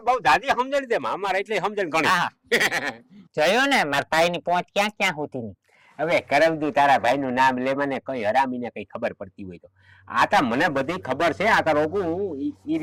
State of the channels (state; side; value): identical; both; correlation 1.00